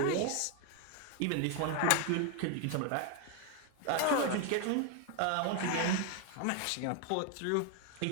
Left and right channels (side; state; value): both; different; correlation 0.01